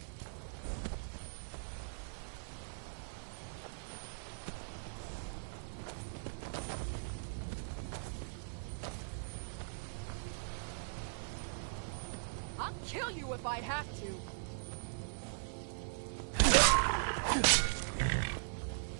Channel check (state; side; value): silent; left; digital silence